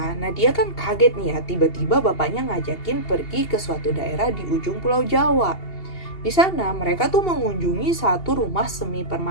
Nadia kan kaget nih ya, tiba-tiba bapaknya ngajakin pergi ke suatu daerah di ujung Pulau Jawa. Di sana mereka tuh mengunjungi satu rumah semi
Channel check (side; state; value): right; late; 2.7 ms